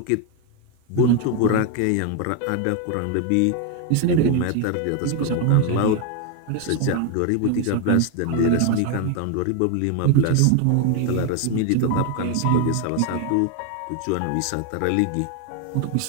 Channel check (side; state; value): both; different; correlation 0.01